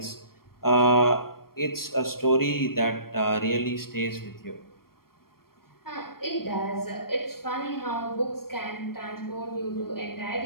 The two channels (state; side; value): late; right; 0.93 ms